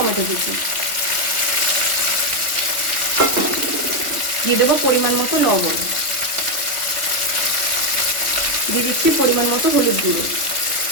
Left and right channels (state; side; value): late; left; 3.6 ms